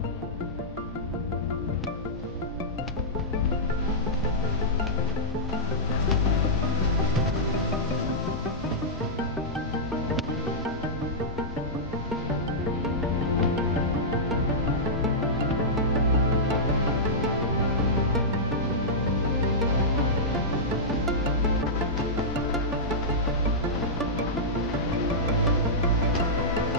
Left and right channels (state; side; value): normal; both; correlation -0.14